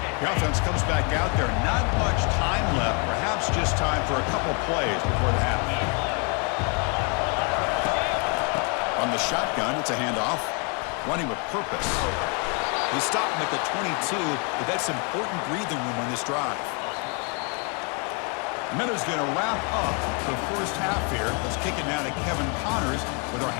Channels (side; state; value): right; quieter; 35.9 dB